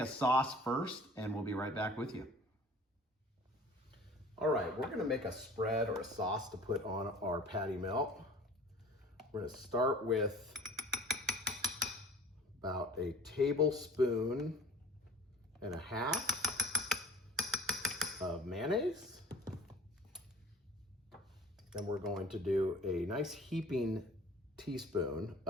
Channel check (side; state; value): both; normal; correlation 0.46